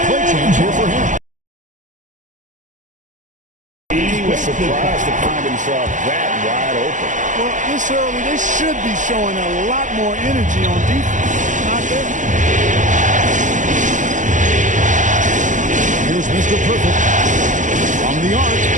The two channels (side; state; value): left; late; 0.37 ms